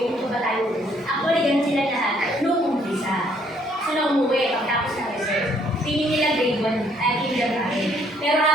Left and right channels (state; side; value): normal; both; correlation 0.66